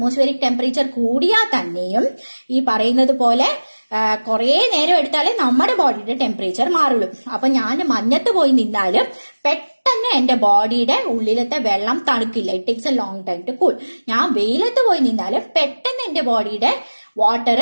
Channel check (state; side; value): inverted; both; correlation -1.00